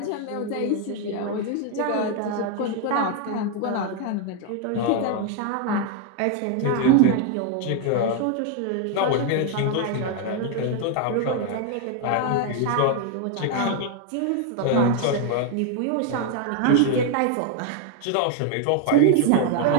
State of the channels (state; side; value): different; both; correlation 0.01